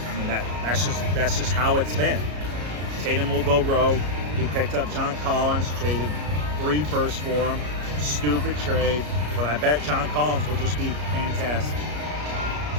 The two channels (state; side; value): late; left; 33 ms